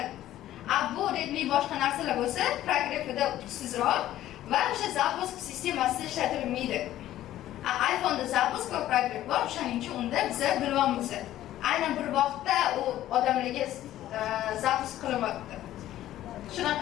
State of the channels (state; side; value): quieter; right; 13.5 dB